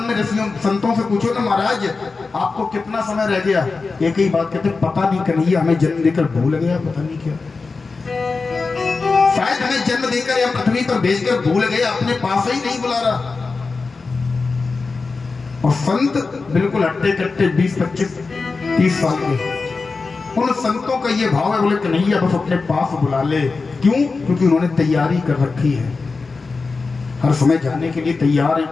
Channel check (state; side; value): quieter; right; 4.2 dB